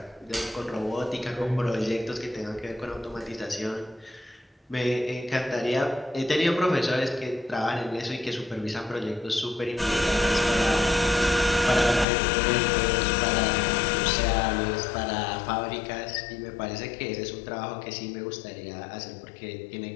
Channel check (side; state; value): right; drops out; at 12.1 s